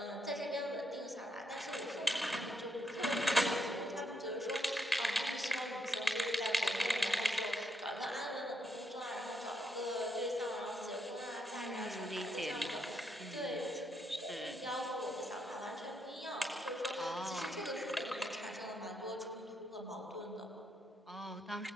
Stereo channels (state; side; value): normal; both; correlation 0.78